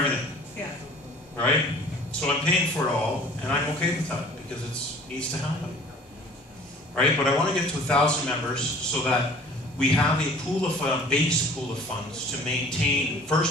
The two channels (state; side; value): normal; both; correlation 0.49